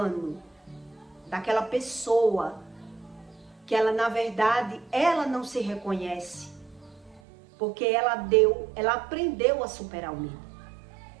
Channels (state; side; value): drops out; left; at 7.2 s